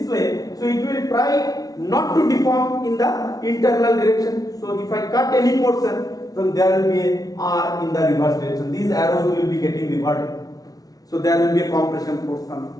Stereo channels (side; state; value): right; late; 0.18 ms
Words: way, so it will try not to deform in the internal direction. So if I cut any portion, then there will be a R in the reverse direction. These arrows will be getting reverted. So there will be a compression force coming.